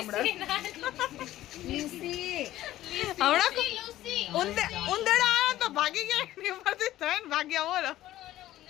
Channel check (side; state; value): right; quieter; 14.5 dB